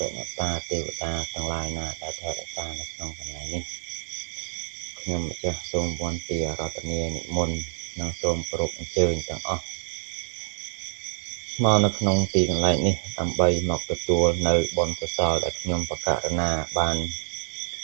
រិយតាទេវតាទាំងឡាយណាដែលថែរក្សានៅក្នុងកន្លែងនេះខ្ញុំម្ចាស់សូមវន្ទារតនានិមន្តនិងសូមគោរពអញ្ជើញទាំងអស់មកនៅក្នុងទីកន្លែងនេះដើម្បីមកទទួលនៅបុណ្យកុសលដែលខ្ញុំបករណាបាន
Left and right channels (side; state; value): left; silent; digital silence